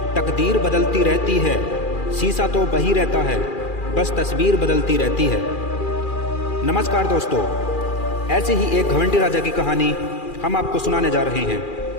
तकदीर बदलती रहती है, शीशा तो वही रहता है, बस तस्वीर बदलती रहती है। नमस्कार दोस्तों, ऐसे ही एक घमंडी राजा की कहानी हम आपको सुनाने जा रहे हैं।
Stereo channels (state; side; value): late; right; 2.4 ms